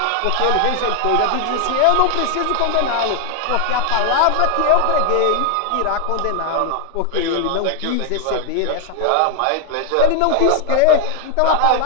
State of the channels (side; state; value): both; different; correlation 0.00